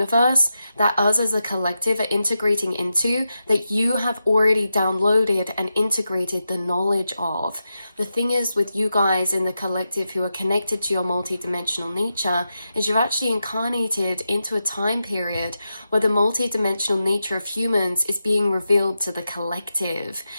that us as a collective are integrating into, that you have already downloaded and integrated the knowledge of. The thing is with you guys in the collective who are connected to your multidimensional nature is you've actually incarnated into a time period where the multidimensional nature of humans is being revealed to the collective.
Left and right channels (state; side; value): inverted; both; correlation -0.88